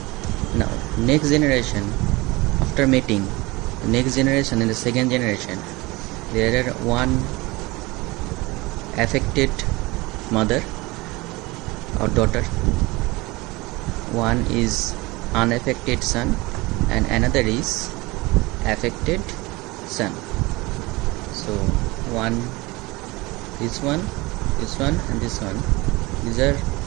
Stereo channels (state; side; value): quieter; left; 22.8 dB